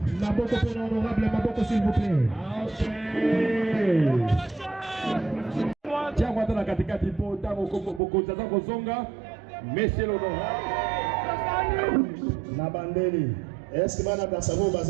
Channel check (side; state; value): left; drops out; at 8.0 s